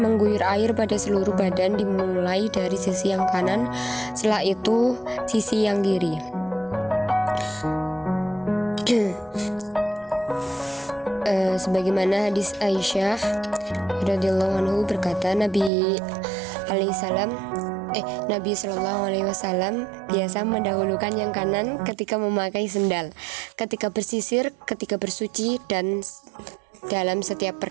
air pada seluruh badan dimulai dari sisi yang kanan, setelah itu sisi yang kiri. Sebagaimana hadis Aisyah radhiyallahu anhu berkata, Nabi Shallallahu alaihi wasallam biasa mendahulukan yang kanan ketika memakai sendal, ketika bersisir, ketika bersuci, dan dalam setiap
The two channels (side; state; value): left; drops out; at 15.7 s